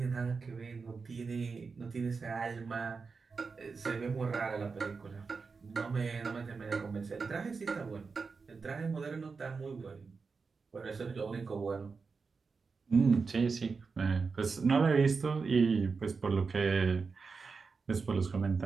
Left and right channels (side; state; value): left; quieter; 4.8 dB